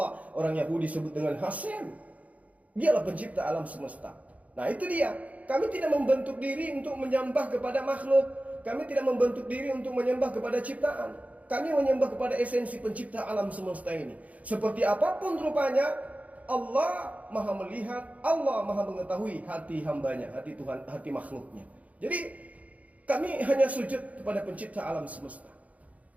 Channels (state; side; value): late; left; 0.070 ms